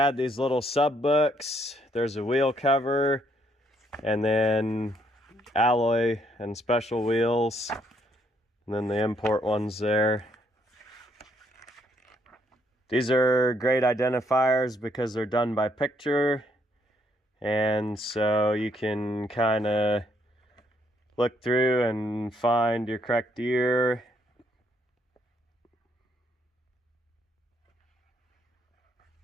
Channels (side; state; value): both; normal; correlation 0.71